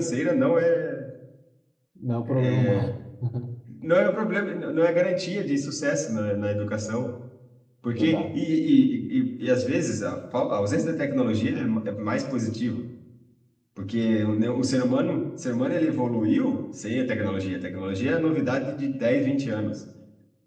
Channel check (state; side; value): identical; both; correlation 1.00